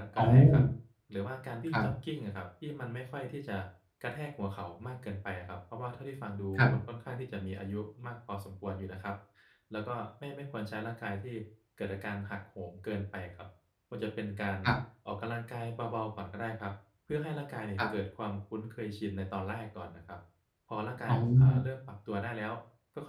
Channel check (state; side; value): identical; both; correlation 1.00